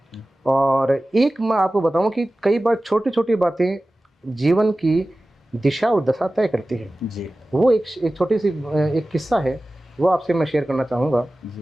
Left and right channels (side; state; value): both; normal; correlation 0.96